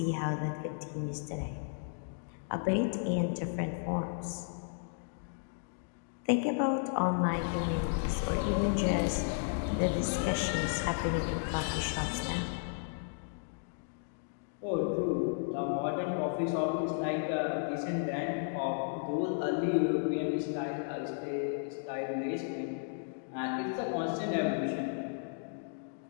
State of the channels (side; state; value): right; silent; digital silence